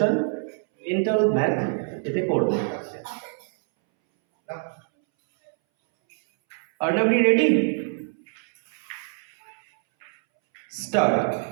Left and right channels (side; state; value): left; silent; 62 dB below the other